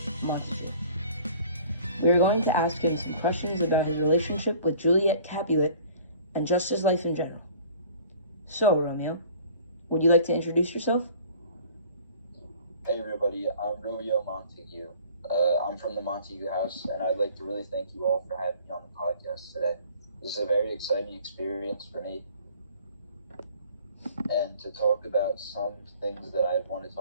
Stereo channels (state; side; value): inverted; both; correlation -0.50